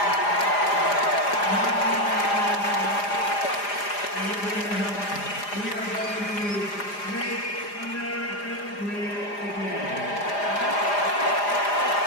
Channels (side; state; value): right; late; 4.9 ms